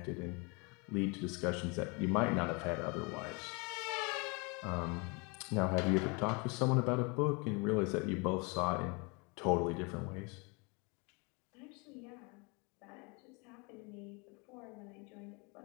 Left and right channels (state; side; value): quieter; right; 30.8 dB